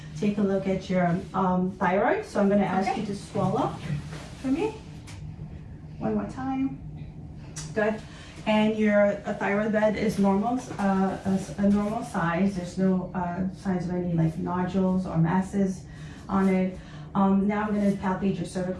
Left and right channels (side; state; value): both; identical; correlation 1.00